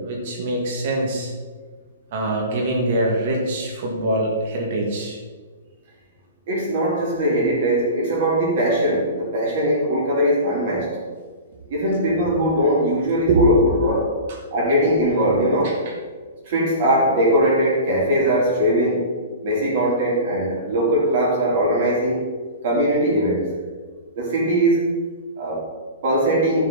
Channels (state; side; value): inverted; both; correlation -0.33